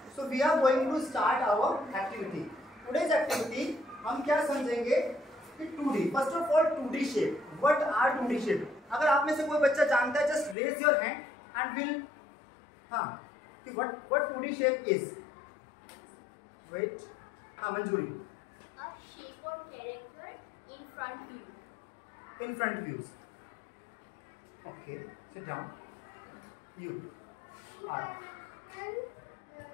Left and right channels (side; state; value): right; drops out; at 10.6 s